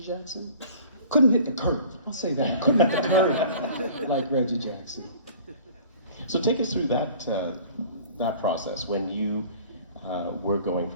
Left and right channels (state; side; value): inverted; both; correlation -0.46